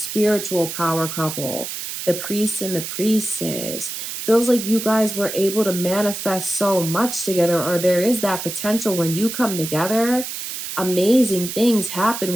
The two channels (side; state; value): right; noise; hiss, 6 dB below the sound